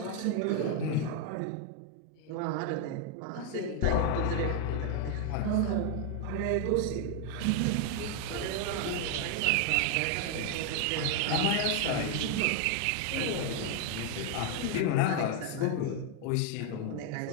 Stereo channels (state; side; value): different; both; correlation 0.01